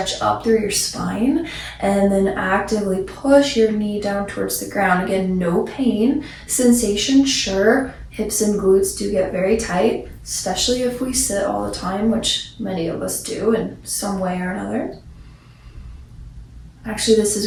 up through your spine and then actively push your knee down towards the ground. Again, no pain. Sensation, sure. Hips and glutes do get very tight, especially if we sit all the time, which many of us do in some way or another. Actually, this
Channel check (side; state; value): both; identical; correlation 1.00